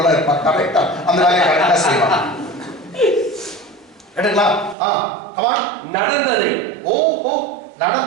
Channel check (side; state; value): left; drops out; at 4.8 s